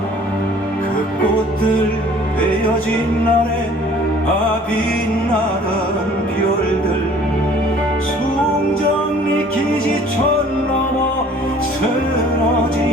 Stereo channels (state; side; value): normal; both; correlation 0.52